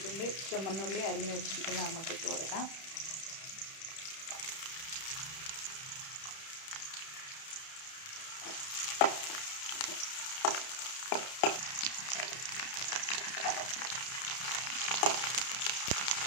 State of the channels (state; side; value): late; right; 31 ms